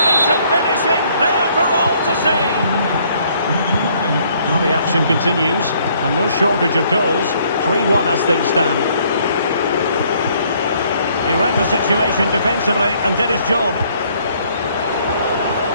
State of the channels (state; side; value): inverted; both; correlation -0.64